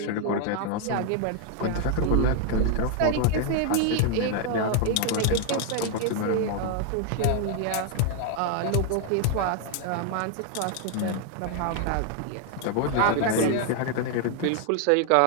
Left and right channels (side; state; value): both; different; correlation 0.00